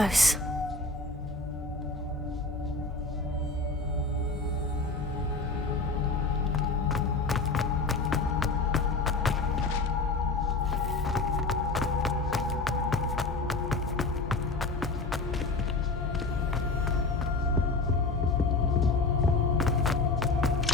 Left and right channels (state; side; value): quieter; right; 3.5 dB